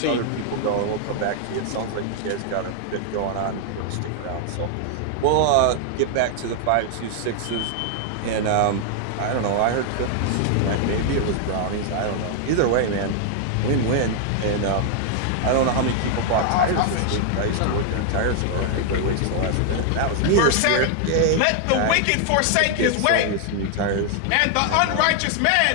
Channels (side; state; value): both; different; correlation 0.00